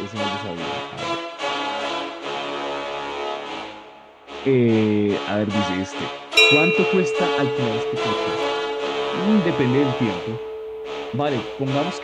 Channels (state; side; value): identical; both; correlation 1.00